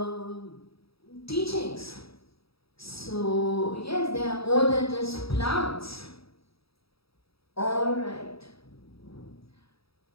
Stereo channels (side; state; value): right; late; 0.76 ms